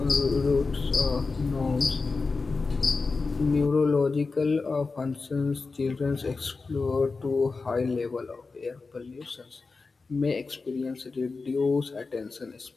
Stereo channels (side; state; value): right; quieter; 4.2 dB